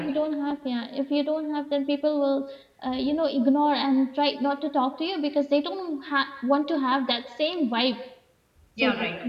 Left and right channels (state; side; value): identical; both; correlation 1.00